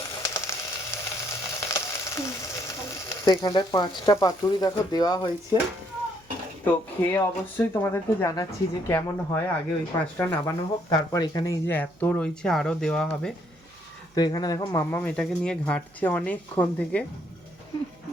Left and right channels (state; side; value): noise; right; hum, 30 dB below the sound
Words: তো এখানটায় 5টা পাতুরি দেখো দেওয়া হয়েছে। তো খেয়ে অবশ্যই তোমাদেরকে জানাচ্ছি যে কেমন হয়। আগে ওই 5টা নামানো হোক, তারপর এখানে এই যে এত রয়েছে আরো দেওয়া হবে। তো এখানে দেখো মাম্মাম এটাকে নিয়ে ঘাঁটছে অনেকক্ষণ থেকে।